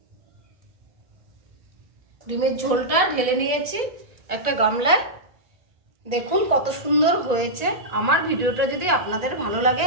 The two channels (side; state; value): left; late; 1.8 ms